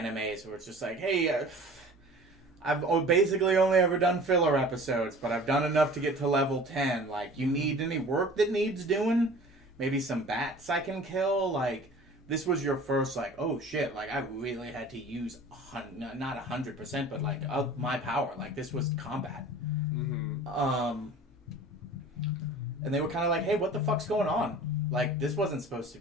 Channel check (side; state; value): both; normal; correlation 0.43